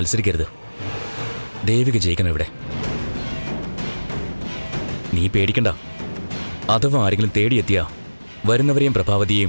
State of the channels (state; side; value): inverted; both; correlation -1.00